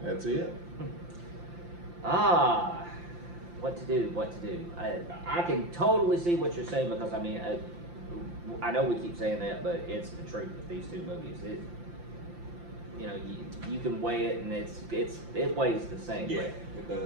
That's it. What to do? I can totally see what you're saying, because I mean, I know we keep saying that, but it's the truth with these two movies. You know, you can weigh it, and it weighs the same. Yeah, But it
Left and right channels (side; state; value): left; late; 5.8 ms